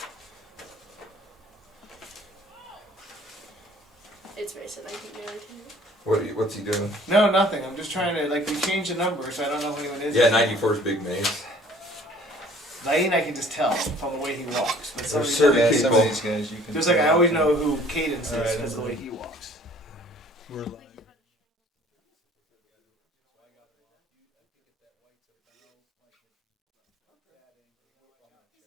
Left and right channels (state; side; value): normal; both; correlation 0.54